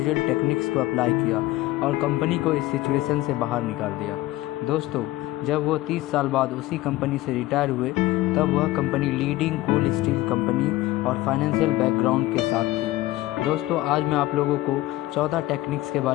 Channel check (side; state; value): right; quieter; 17.3 dB